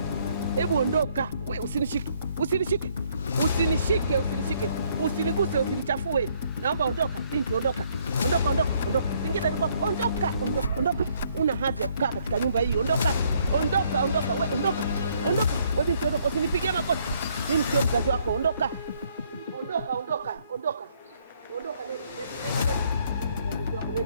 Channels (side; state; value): both; inverted; correlation -0.67